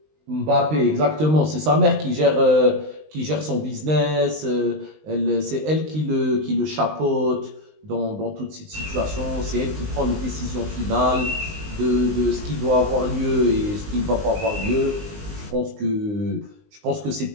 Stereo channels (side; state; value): left; late; 19 ms